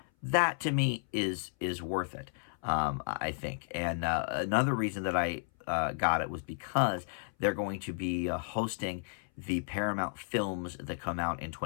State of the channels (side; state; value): right; silent; 56 dB below the other